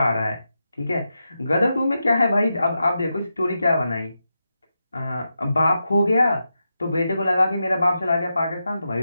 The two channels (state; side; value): inverted; both; correlation -0.88